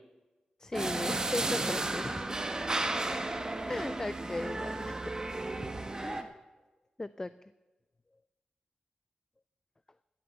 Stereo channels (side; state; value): both; normal; correlation 0.81